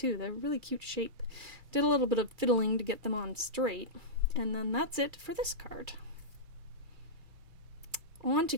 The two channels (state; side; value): late; left; 2.3 ms